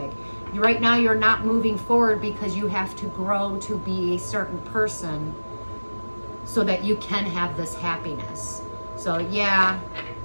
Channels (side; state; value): both; inverted; correlation -1.00